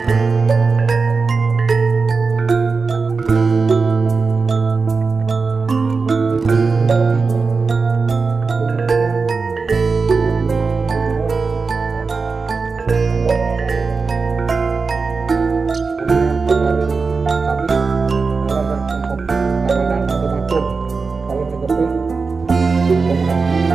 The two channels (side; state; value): left; quieter; 4.5 dB